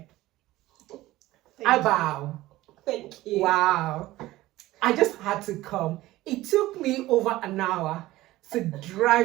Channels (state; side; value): quieter; left; 17.0 dB